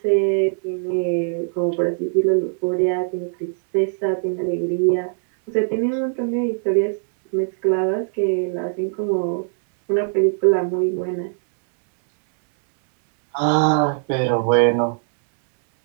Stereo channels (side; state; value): left; silent; digital silence